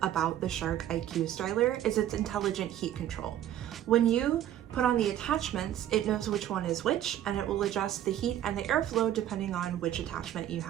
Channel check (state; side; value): quieter; left; 11.7 dB